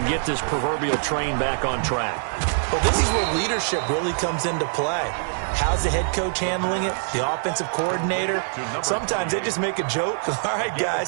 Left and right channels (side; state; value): left; silent; digital silence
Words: get this proverbial train back on track? Well, this is where leadership really comes into play. How's the head coach handling it? The offensive coordinator? Sometimes they just make a joke. All right,